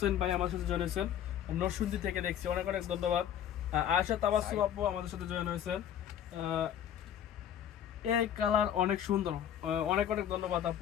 ভাই আমার সাথে জয়েন হয়েছেন, নরসিংদী থেকে দেখছি, অনেক অনেক ধন্যবাদ। আয়েশা তাবাসসুম আপু আমাদের সাথে জয়েন হয়েছেন। এই কালার অনেক সুন্দর, অনেক অনেক ধন্যবাদ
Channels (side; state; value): right; quieter; 10.0 dB